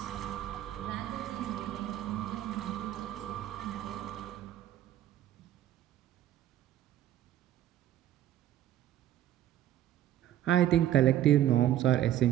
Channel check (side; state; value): left; quieter; 12.4 dB